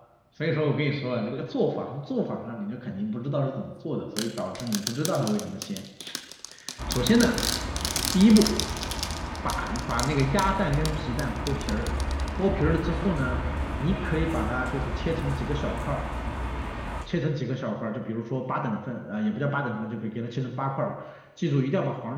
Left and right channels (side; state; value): both; identical; correlation 1.00